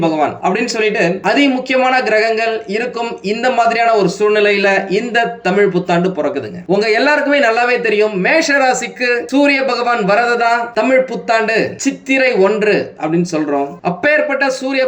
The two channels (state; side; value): identical; both; correlation 1.00